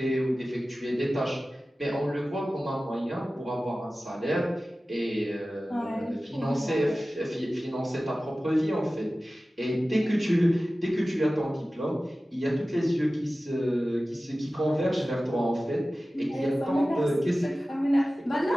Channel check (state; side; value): normal; both; correlation 0.96